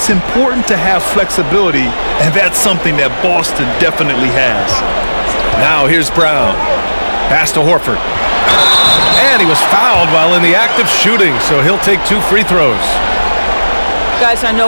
important to have flexibility, and that's something that Boston definitely has. Now here's Brown. Pass to Horford. And he was fouled while in the act of shooting, so he'll take 2 free throws. Guys, I know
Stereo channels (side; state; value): both; inverted; correlation -1.00